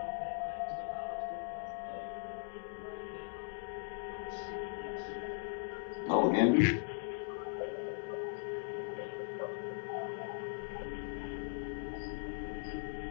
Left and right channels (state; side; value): silent; right; 52 dB below the other